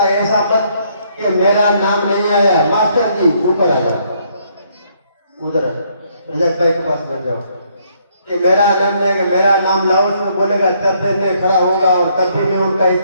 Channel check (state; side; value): inverted; both; correlation -0.69